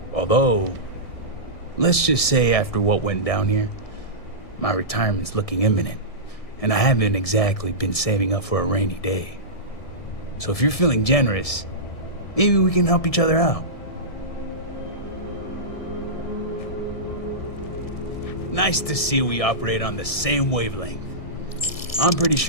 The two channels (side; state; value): right; late; 1.6 ms